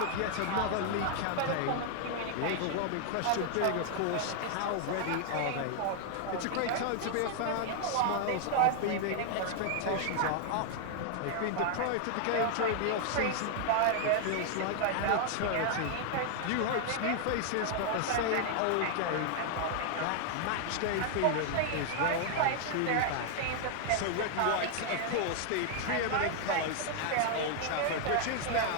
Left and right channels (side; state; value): both; different; correlation 0.00